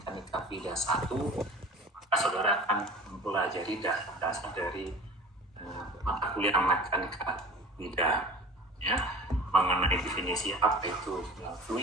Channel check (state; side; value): normal; both; correlation 0.40